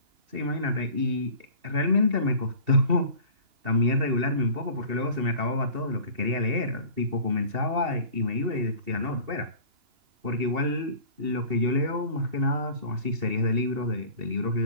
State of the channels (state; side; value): late; left; 2.7 ms